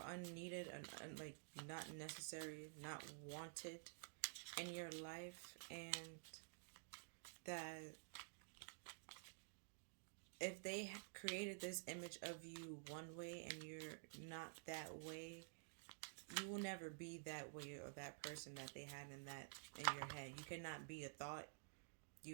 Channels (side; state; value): left; silent; digital silence